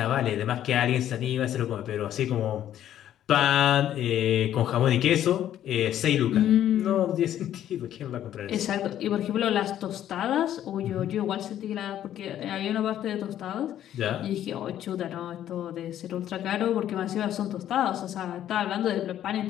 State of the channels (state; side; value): quieter; right; 11.4 dB